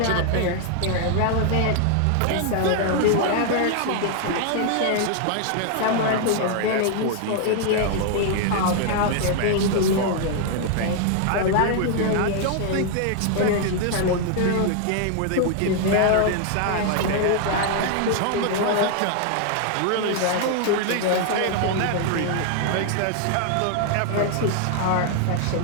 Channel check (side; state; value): both; different; correlation 0.00